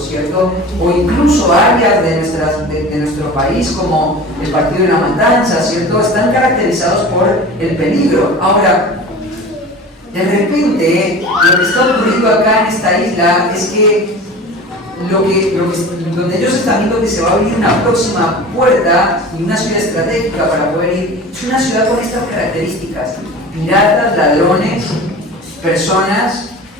O incluso áreas de nuestro país como el Partido de la Matanza, ¿cierto? Están caracterizados por el peligro. Ahora, de repente, lo que está ocurriendo acá en esta isla es que donde ellos están viendo que se va a abrir una próxima puerta y una ciudad estratégica para poder ir, es una ciudad con estas características: piratas, ladrones, personas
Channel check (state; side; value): normal; both; correlation 0.36